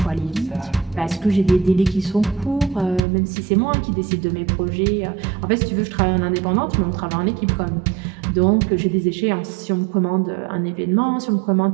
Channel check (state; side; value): drops out; left; at 3.0 s